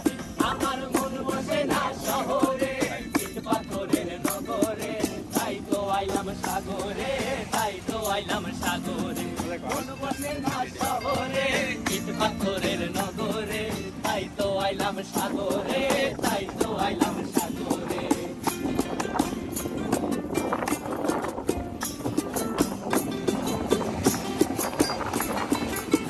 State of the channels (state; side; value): identical; both; correlation 1.00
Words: আমার মন বসে না শহরে, ইট পাথরের নগরে, তাই তো আইলাম সাগরে, তাই তো আইলাম সাগরে। মন বসে না শহরে, ইট পাথরের নগরে, তাই তো আইলাম সাগরে, তাই তো আইলাম সাগরে।